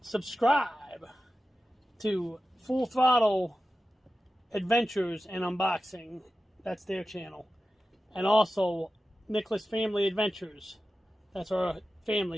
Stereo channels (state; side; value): normal; both; correlation 0.93